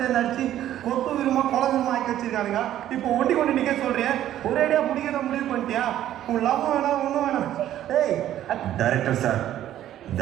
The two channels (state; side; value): quieter; left; 12.2 dB